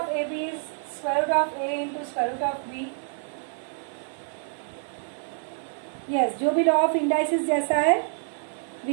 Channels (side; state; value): left; silent; digital silence